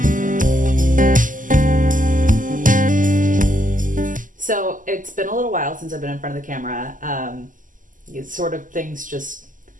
So it's been a little while since I've been in front of the camera. Things just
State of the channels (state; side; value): late; left; 0.38 ms